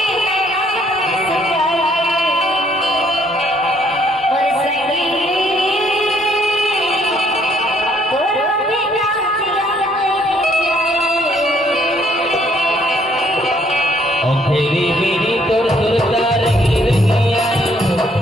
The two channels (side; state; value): both; normal; correlation 0.66